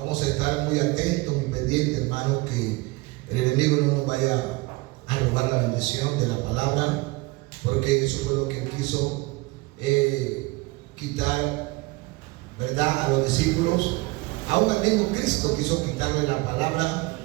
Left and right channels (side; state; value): left; quieter; 23.2 dB